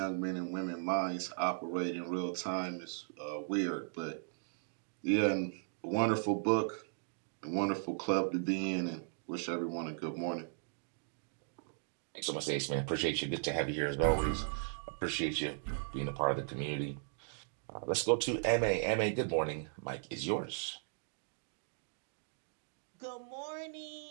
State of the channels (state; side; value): silent; left; digital silence